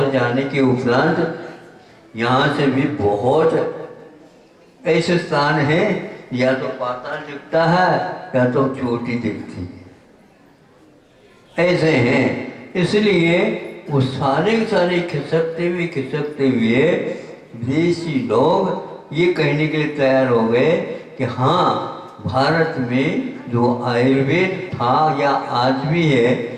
जाने के उपरांत। यहाँ से भी बहुत ऐसे स्थान हैं, या तो पाताल दिखता है या तो चोटी दिखती है, ऐसे हैं। इसलिए वो सारे के सारे खिसकते हुए विदेशी लोग ये कहने के लिए तैयार हो गए कि हाँ, भारत में जो आयुर्वेद था या आज भी है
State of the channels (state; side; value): identical; both; correlation 1.00